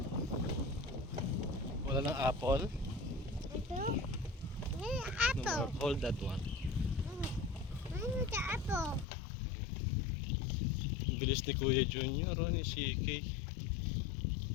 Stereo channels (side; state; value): right; drops out; at 9.1 s